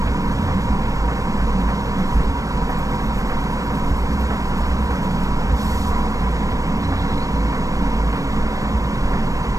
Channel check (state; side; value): late; left; 0.16 ms